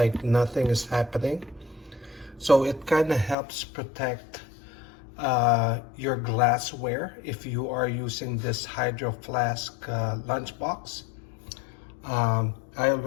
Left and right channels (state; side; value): drops out; right; at 3.4 s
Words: nothing is happening. So it kind of helps protect your glassware if you are using this Hydro Flask lunchbox. I